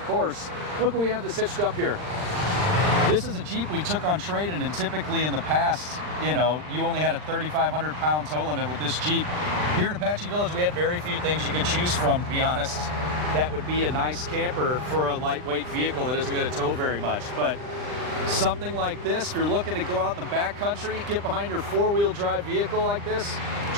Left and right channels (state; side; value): late; left; 39 ms